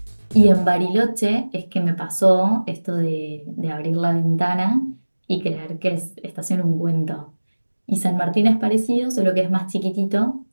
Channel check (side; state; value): both; inverted; correlation -1.00